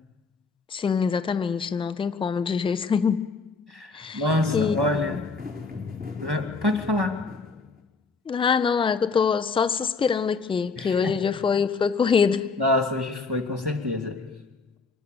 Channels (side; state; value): right; quieter; 4.5 dB